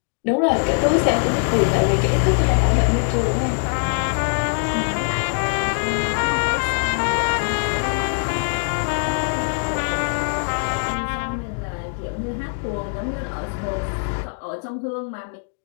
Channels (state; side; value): silent; right; digital silence